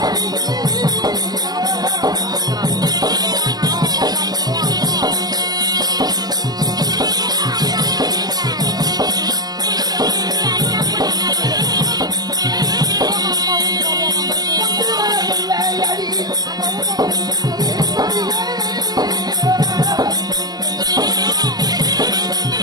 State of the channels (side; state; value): left; late; 0.19 ms